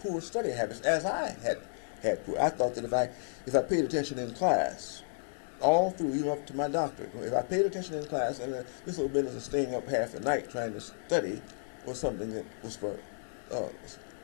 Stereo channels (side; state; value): right; silent; digital silence